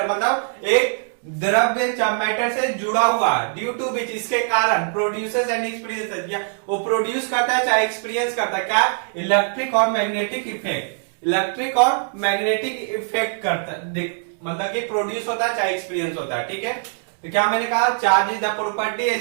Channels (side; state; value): left; silent; 59 dB below the other